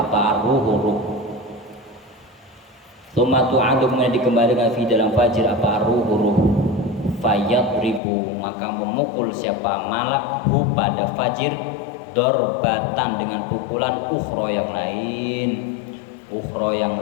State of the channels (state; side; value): drops out; right; at 8.0 s